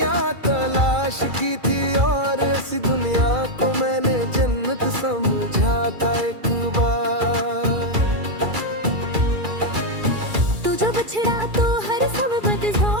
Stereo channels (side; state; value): left; late; 2.3 ms